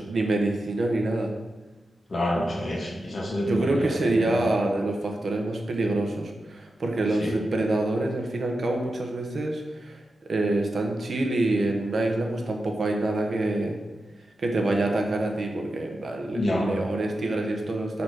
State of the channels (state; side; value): normal; both; correlation 0.90